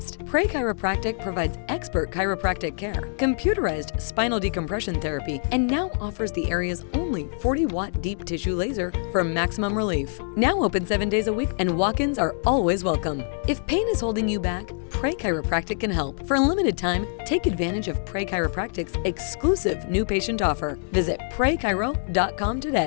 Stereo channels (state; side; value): silent; right; digital silence